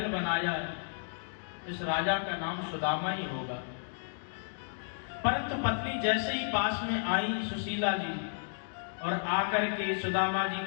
बनाया इस राजा का नाम सुदामा ही होगा। परंतु पत्नी जैसे ही पास में आई सुशीला जी और आकर के सुदामा जी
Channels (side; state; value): right; silent; digital silence